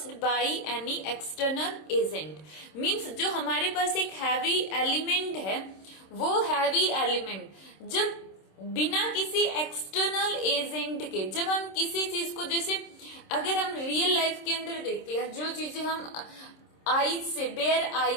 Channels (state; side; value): late; right; 26 ms